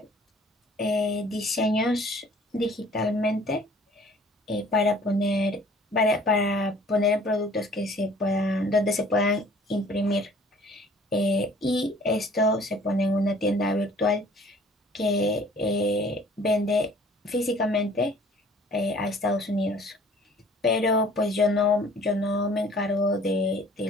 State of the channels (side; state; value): both; normal; correlation 0.53